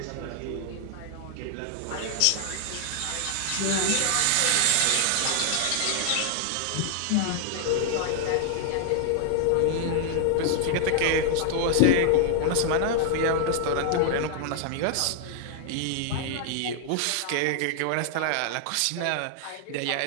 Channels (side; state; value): both; different; correlation 0.00